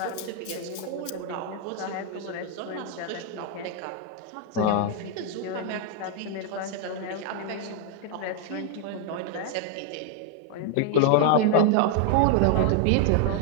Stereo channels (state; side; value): different; both; correlation 0.00